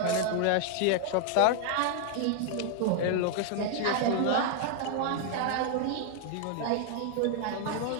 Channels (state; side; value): different; both; correlation 0.00